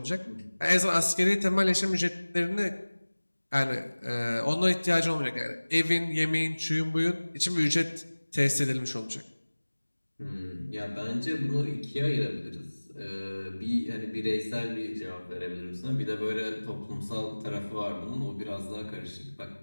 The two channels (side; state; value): both; inverted; correlation -1.00